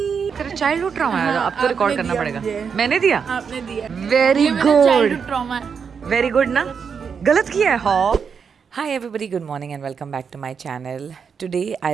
तेरा चाइल्डहुड ट्रॉमा है, अब तो रिकॉर्ड करना पड़ेगा. मैंने दिया? आपने दिया. Very good. Trauma. Very good ना? गलत किया है हाँ. Hi everybody, good morning and welcome back to my channel. Today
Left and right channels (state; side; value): quieter; left; 6.4 dB